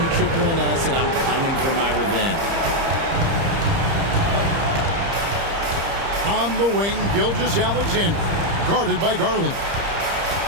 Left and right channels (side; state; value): left; late; 30 ms